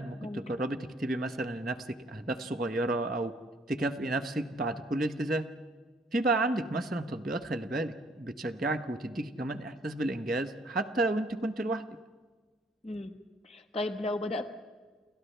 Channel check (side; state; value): both; normal; correlation 0.63